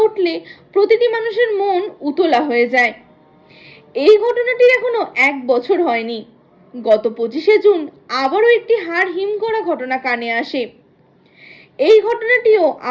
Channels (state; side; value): identical; both; correlation 1.00